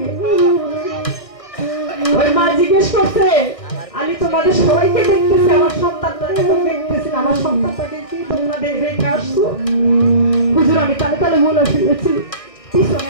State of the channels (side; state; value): right; late; 1.6 ms